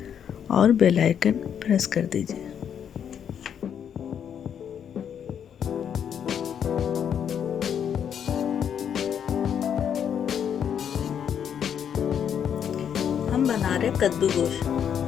और बेल आइकन प्रेस कर दीजिए। हम बना रहे कद्दू गोश्त।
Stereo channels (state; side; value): quieter; right; 8.5 dB